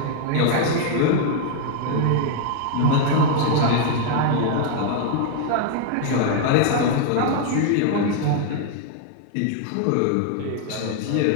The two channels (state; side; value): different; both; correlation 0.00